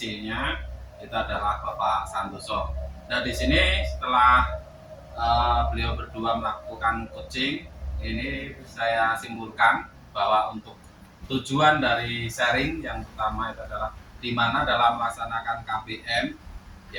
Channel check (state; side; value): identical; both; correlation 1.00